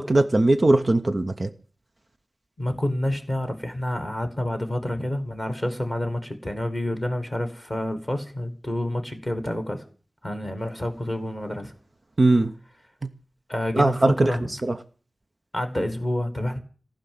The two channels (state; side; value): normal; both; correlation 0.97